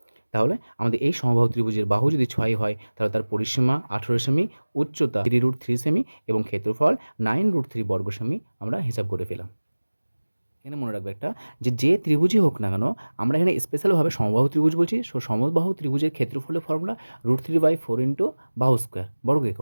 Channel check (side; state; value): both; inverted; correlation -1.00